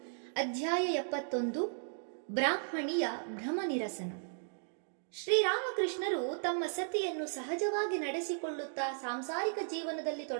ಅಧ್ಯಾಯ 71, ಬ್ರಾಹ್ಮಣಿಯ ಭ್ರಮ ನಿರಸನ. ಶ್ರೀರಾಮಕೃಷ್ಣರು ತಮ್ಮ ಸತಿಯನ್ನು ಸಹಜವಾಗಿ ನಡೆಸಿಕೊಳ್ಳುತ್ತಾ ಸಾಂಸಾರಿಕ ಜೀವನದಲ್ಲಿ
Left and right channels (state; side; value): silent; left; digital silence